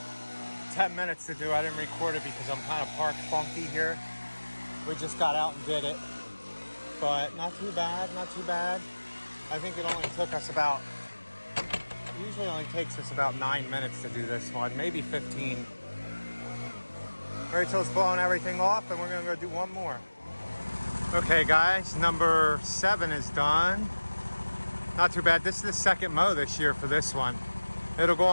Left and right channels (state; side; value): inverted; both; correlation -1.00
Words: 10 minutes to do. I didn't record it because I'm kind of parked funky here. We just got out and did it. But not too bad, not too bad. I think it only took us about, usually only takes us about 9 minutes to do this one, maybe 15. Rachel's blowing everything off, and we're gonna go do one more. Okay guys, number 7 is done. Not too bad. This is the second mow this year for this one. It'll go